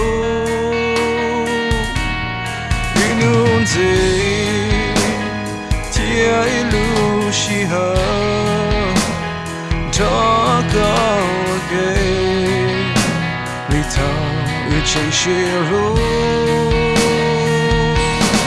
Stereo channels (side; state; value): both; identical; correlation 1.00